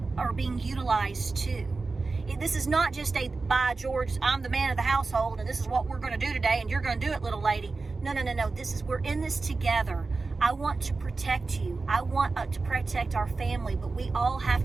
being utilized too. This is not just a, by George, I'm the man of the household and this is what we're going to do today and you're going to do it, little lady. No. We're in this together. I want to protect you. I want to protect our family, but we all have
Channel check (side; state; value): left; quieter; 3.9 dB